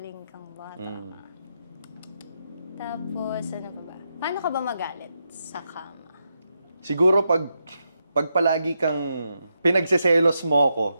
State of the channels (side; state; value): both; inverted; correlation -0.84